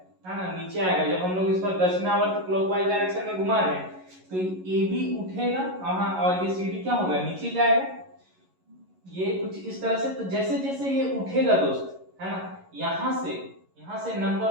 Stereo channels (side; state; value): left; late; 11 ms